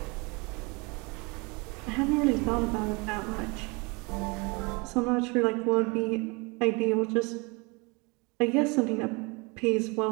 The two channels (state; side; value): quieter; left; 28.4 dB